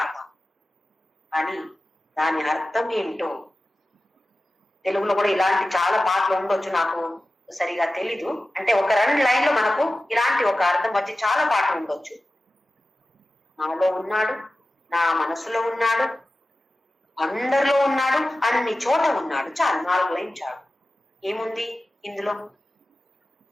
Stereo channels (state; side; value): normal; both; correlation 0.94